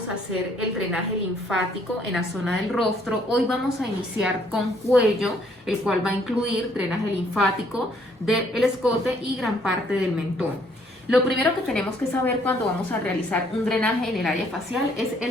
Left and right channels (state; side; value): normal; both; correlation 0.65